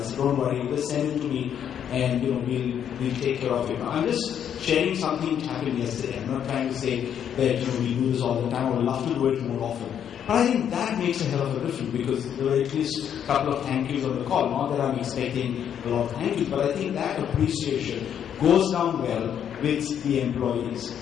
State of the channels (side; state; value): right; quieter; 9.0 dB